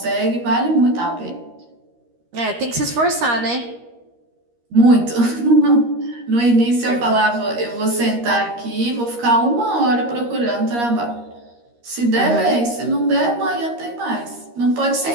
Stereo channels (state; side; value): late; left; 13 ms